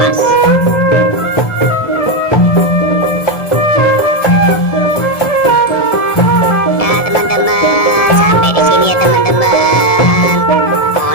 Ya teman-teman, sampai di sini ya teman-teman.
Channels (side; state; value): right; late; 1.7 ms